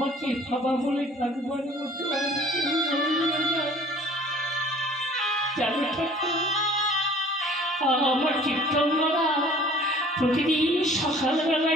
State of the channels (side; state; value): both; normal; correlation 0.50